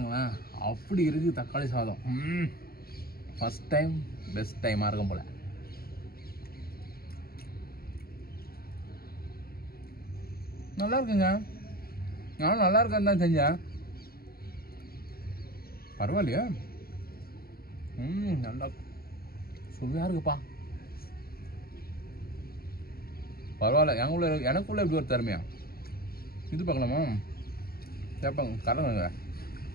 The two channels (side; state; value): right; late; 0.44 ms